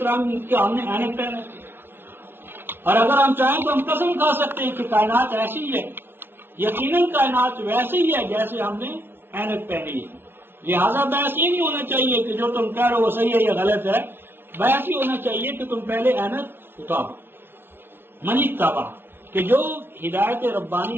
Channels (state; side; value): late; left; 0.11 ms